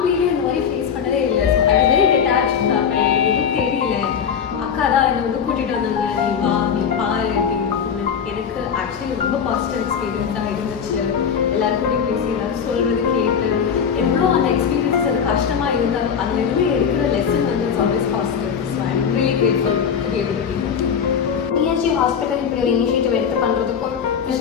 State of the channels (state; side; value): quieter; right; 7.3 dB